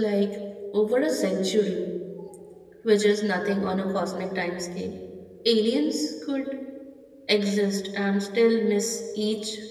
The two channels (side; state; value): both; identical; correlation 1.00